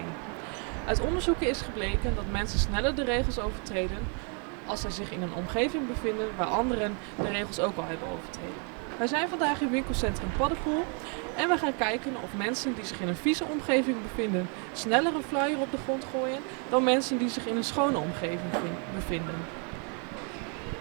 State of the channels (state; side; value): quieter; left; 39.0 dB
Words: Uit onderzoeken is gebleken dat mensen sneller de regels overtreden als zij zich in een omgeving bevinden waar anderen de regels ook al hebben overtreden. Wij zijn vandaag in winkelcentrum Paddepoel en we gaan kijken of mensen die zich in een vieze omgeving bevinden sneller een flyer op de grond gooien dan mensen die zich in een schone omgeving bevinden.